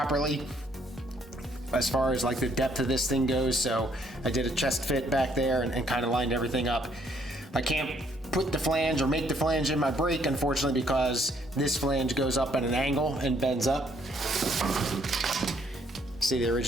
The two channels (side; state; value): both; normal; correlation 0.67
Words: as far as like the depth of this thing goes. So I did a chest fit back there and kind of lined everything up. I can't put the flange or make the flange in my brake, unfortunately, because this flange goes up at an angle and bends up. See the